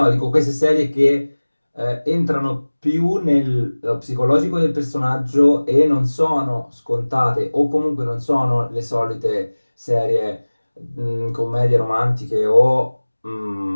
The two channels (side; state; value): both; inverted; correlation -1.00